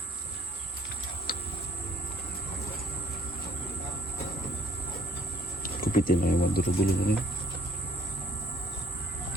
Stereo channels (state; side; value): normal; both; correlation 0.63